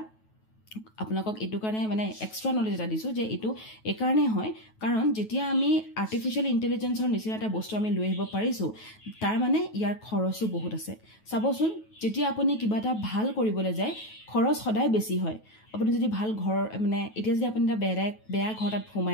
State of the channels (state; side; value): late; right; 9.3 ms